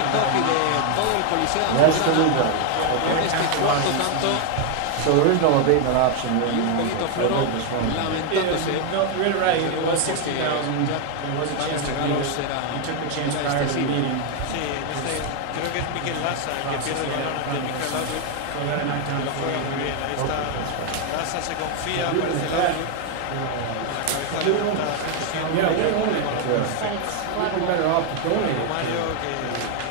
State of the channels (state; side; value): different; both; correlation 0.01